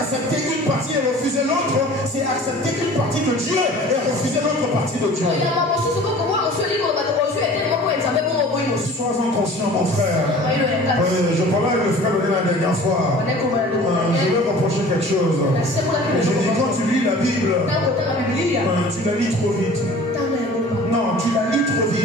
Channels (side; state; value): both; normal; correlation 0.45